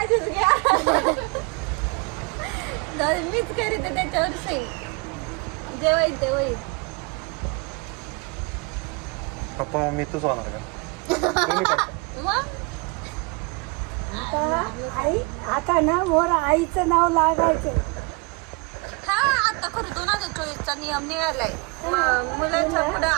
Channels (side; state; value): left; quieter; 29.4 dB